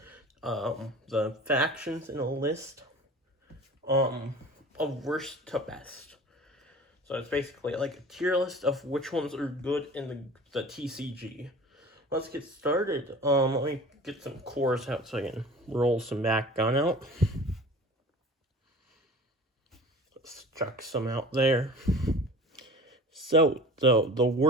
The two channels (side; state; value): both; normal; correlation 0.41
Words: factions in a list of worst to best. So it's basically like a tier list of which ones are good in the TCG. Let's get started. Let me get some cores out so I can roll some Bakugan out. Let's chuck some out there. So, the